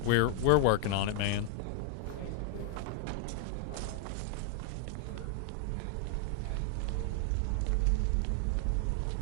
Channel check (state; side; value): different; both; correlation 0.00